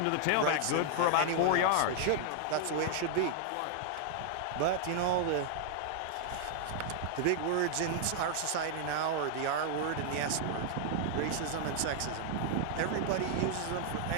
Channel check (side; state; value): both; different; correlation -0.01